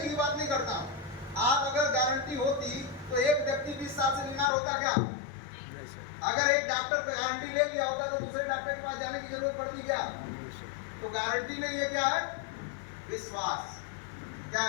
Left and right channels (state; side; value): drops out; right; at 4.5 s